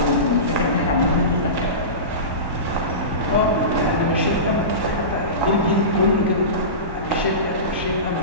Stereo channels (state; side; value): late; left; 1.1 ms